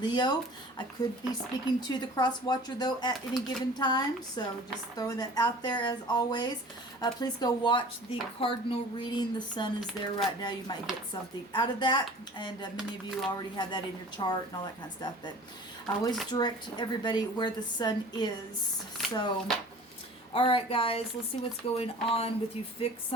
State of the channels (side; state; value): both; normal; correlation 0.44